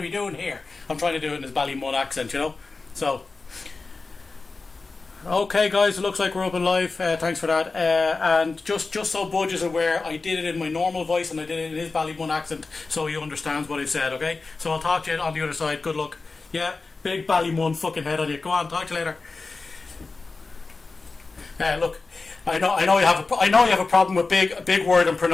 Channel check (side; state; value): right; quieter; 3.9 dB